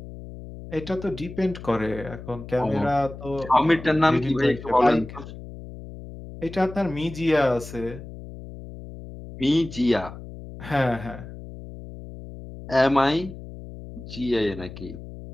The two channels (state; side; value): noise; left; hum, 13 dB below the sound